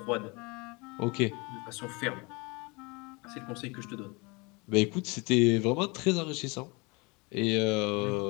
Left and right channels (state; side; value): quieter; right; 27.6 dB